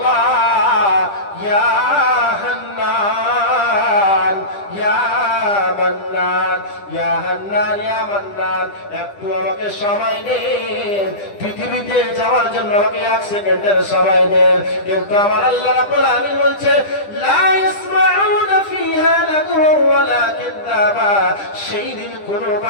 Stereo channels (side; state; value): right; late; 10 ms